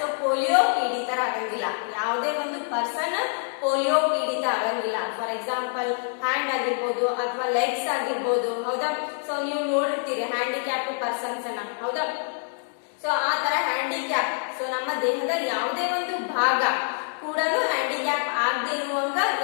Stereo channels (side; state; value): right; silent; 61 dB below the other